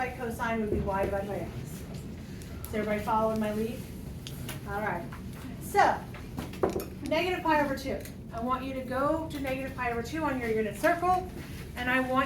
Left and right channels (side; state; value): both; identical; correlation 1.00